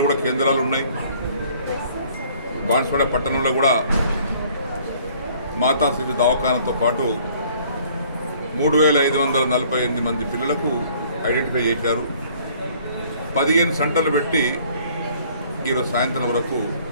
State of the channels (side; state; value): both; inverted; correlation -0.57